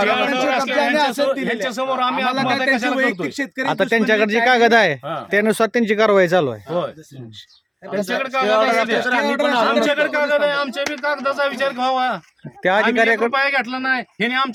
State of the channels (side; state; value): both; identical; correlation 1.00